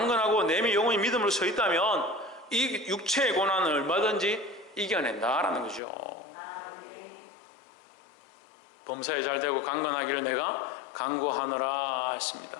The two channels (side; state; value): right; drops out; at 5.8 s